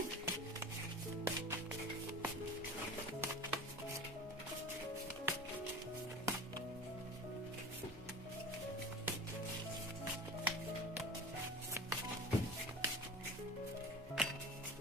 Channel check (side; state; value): both; normal; correlation 0.35